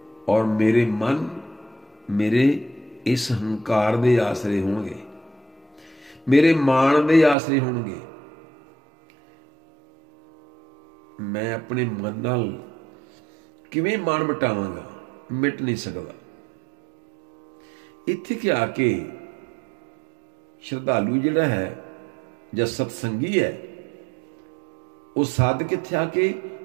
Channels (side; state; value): left; drops out; at 7.4 s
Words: ਔਰ ਮੇਰੇ ਮਨ, ਮੇਰੇ ਇਸ ਹੰਕਾਰ ਦੇ ਆਸਰੇ ਹੋਣਗੇ, ਮੇਰੇ ਮਾਣ ਦੇ ਆਸਰੇ ਹੋਣਗੇ। ਮੈਂ ਆਪਣੇ ਮਨ ਨਾਲ ਕਿਵੇਂ ਮਾਣ ਮਿਟਾਵਾਂਗਾ? ਮਿਟ ਨਹੀਂ ਸਕਦਾ। ਇੱਥੇ ਕਿ ਆ ਕੇ ਸ਼ਰਧਾਲੂ ਜਿਹੜਾ ਹੈ ਜਾਂ ਸਤਸੰਗੀ ਹੈ ਉਹ ਸਾਧਕ ਇੱਥੇ ਆ ਕੇ